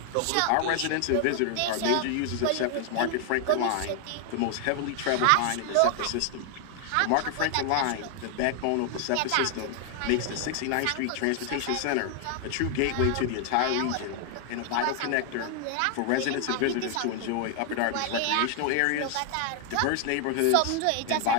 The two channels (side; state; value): both; different; correlation 0.00